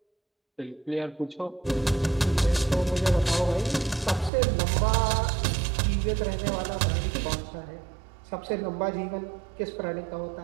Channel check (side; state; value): left; drops out; at 4.3 s